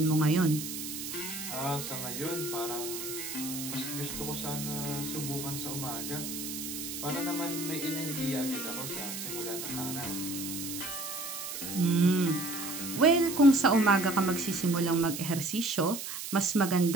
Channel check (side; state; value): right; noise; hiss, 7 dB below the sound